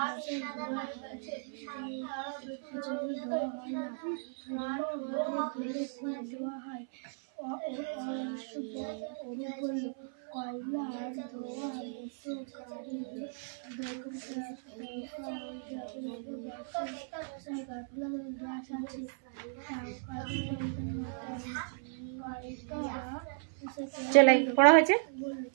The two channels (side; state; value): left; silent; 54 dB below the other